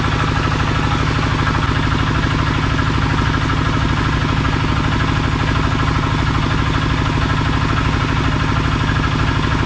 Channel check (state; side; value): identical; both; correlation 1.00